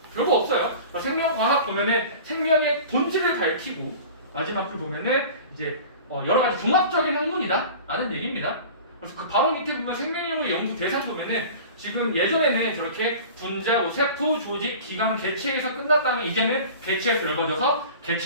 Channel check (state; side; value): inverted; both; correlation -0.39